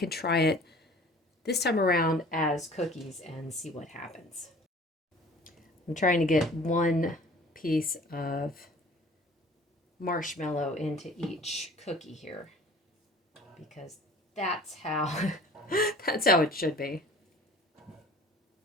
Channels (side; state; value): both; normal; correlation 0.48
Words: try it this time around as cookies and see what happens. I'm trying to get one piece of marshmallow into each cookie here, because that's how that's how it should be.